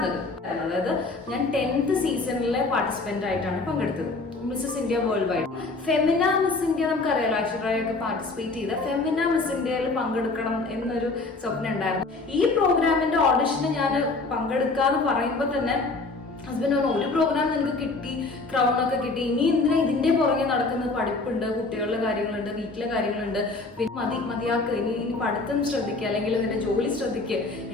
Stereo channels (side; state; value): right; quieter; 3.5 dB